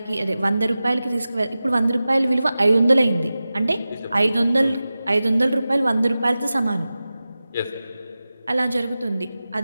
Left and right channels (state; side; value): inverted; both; correlation -0.95